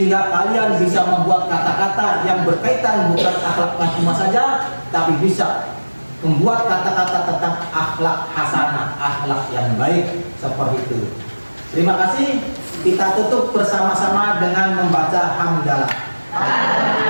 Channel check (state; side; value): inverted; both; correlation -1.00